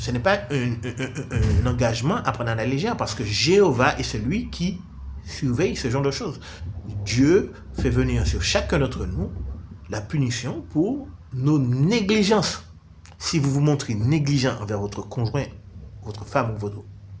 n'est pas un engagement à prendre à la légère, parce que Jéhovah est celui qui surveille ce genre de choses. Dieu fait venir sur chacun d'entre nous la punition pour nos négligences. Si vous vous montrez négligent envers votre conjoint, votre femme ou votre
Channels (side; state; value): both; identical; correlation 1.00